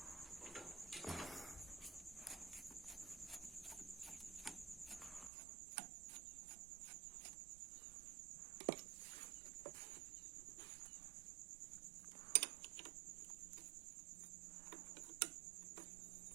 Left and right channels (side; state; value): left; drops out; at 5.3 s